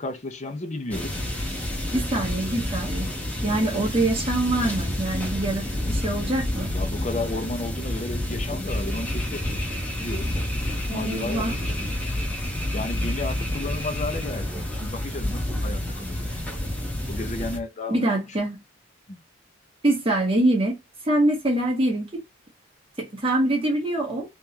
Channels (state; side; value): normal; both; correlation 0.71